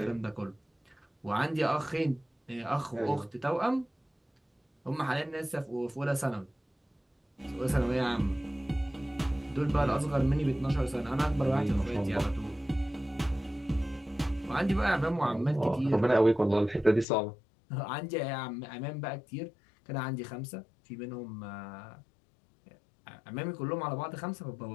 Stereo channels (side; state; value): right; drops out; at 17.1 s